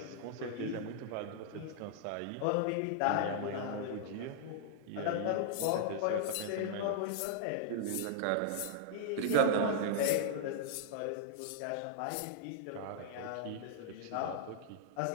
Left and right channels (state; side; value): different; both; correlation -0.01